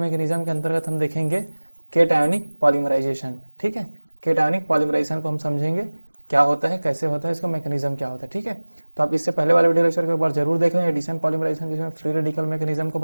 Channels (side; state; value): both; inverted; correlation -1.00